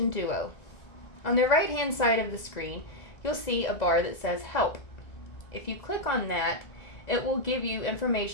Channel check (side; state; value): right; late; 2.0 ms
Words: Duo. On the right hand side of the screen, you'll see a bar that says Help. If you click on that, it will give you